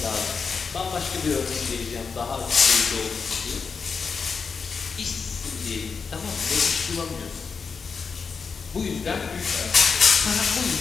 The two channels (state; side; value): quieter; right; 5.4 dB